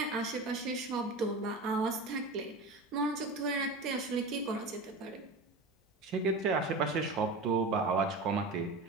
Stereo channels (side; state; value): left; quieter; 3.1 dB